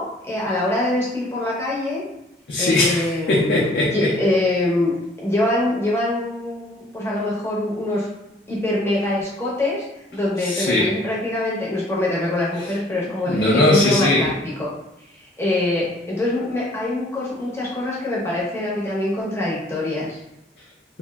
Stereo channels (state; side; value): normal; both; correlation 0.56